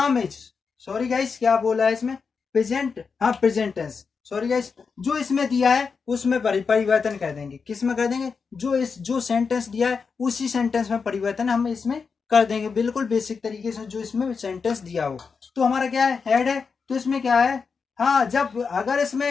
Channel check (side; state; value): right; quieter; 5.4 dB